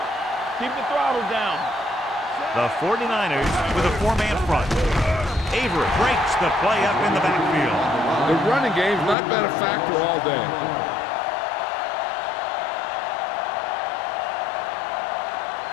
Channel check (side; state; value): right; drops out; at 9.2 s